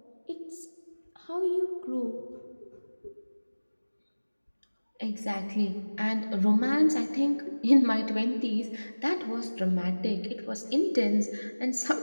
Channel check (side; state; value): both; inverted; correlation -1.00